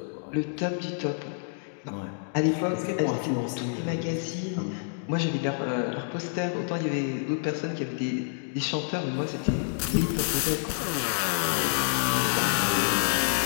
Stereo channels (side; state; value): right; silent; digital silence